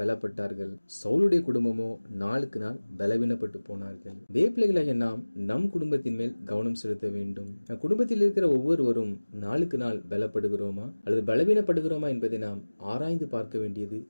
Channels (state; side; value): inverted; both; correlation -1.00